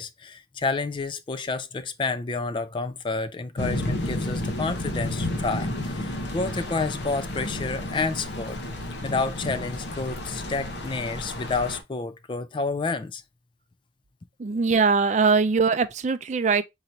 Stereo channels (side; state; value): both; normal; correlation 0.19